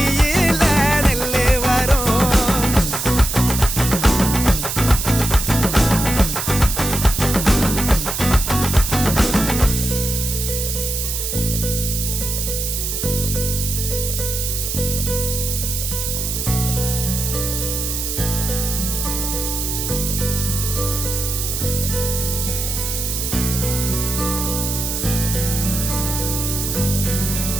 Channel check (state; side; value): noise; right; hiss, 3 dB below the sound